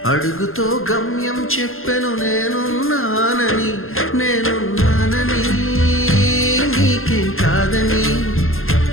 అడుగుతో గమ్యం చెప్పెను, నేనున్నానని నీకేం కాదని,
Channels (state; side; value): late; right; 0.61 ms